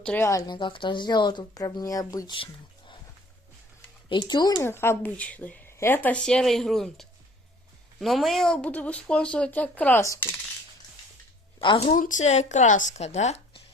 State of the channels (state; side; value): normal; both; correlation 0.52